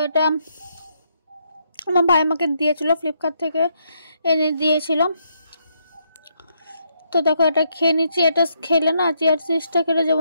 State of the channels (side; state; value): both; inverted; correlation -0.76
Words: এটা আমার ভাই আমাকে দিয়েছিল, ফ্লিপকার্ট থেকে এনে দিয়েছিল। তো দেখো, এটা খেয়ে নিচ্ছি। এটা খেলে না, চিয়া সিডসটা খেলে